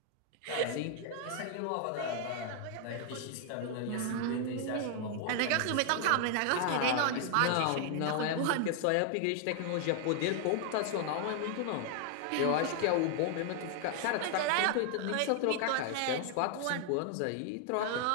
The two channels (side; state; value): both; different; correlation 0.00